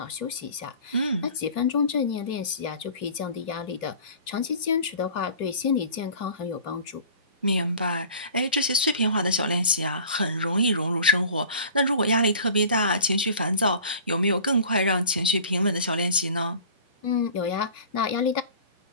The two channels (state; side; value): inverted; both; correlation -0.44